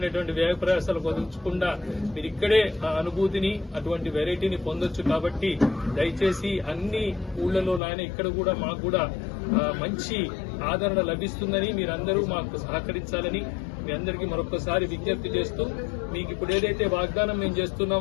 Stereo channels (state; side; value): drops out; right; at 7.8 s